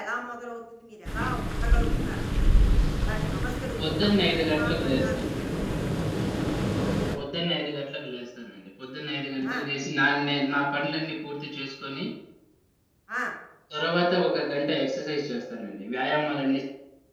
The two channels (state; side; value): identical; both; correlation 1.00